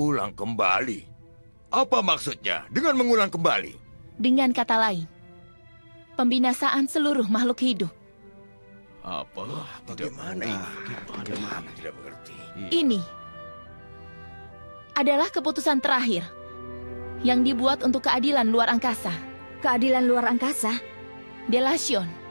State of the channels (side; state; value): both; inverted; correlation -1.00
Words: kembali? Apa maksudnya dengan mengulang kembali? Dengan kata lain, pembinasaan seluruh makhluk hidup. Apa? Bagaimana ini? Bagaimana? Tidak mengerti. Ini adalah keputusan terakhir yang dibuat untuk keadilan luar angkasa. Keadilan luar angkasa? Delation.